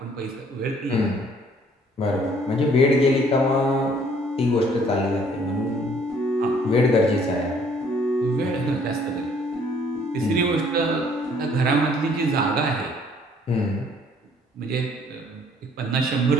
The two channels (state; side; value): normal; both; correlation 0.60